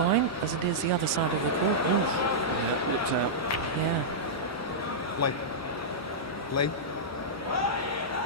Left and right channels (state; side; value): normal; both; correlation -0.12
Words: as it is the other side of the court. Ooh. Yeah, looked out. Yeah. Play. Play.